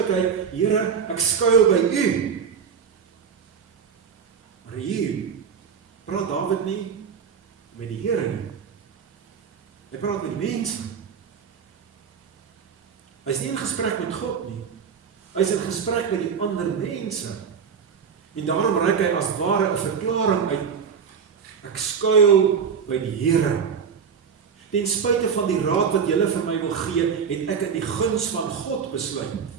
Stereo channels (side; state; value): left; quieter; 6.7 dB